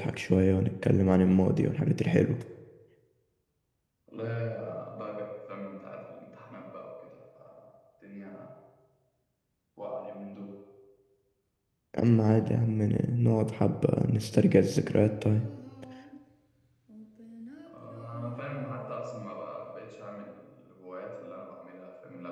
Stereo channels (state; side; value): identical; both; correlation 1.00